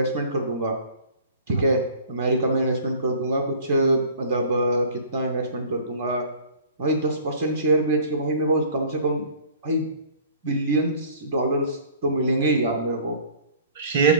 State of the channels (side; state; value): both; inverted; correlation -0.49